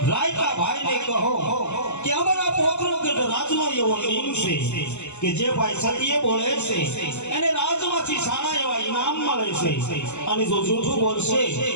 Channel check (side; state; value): right; late; 0.83 ms